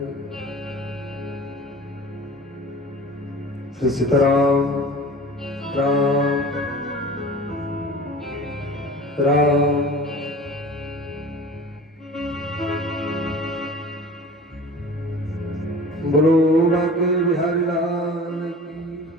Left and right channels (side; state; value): both; normal; correlation 0.40